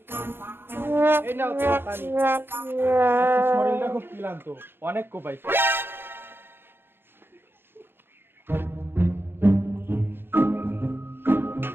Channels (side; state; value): left; late; 0.10 ms